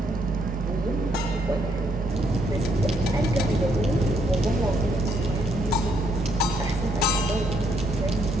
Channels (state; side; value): normal; both; correlation 0.72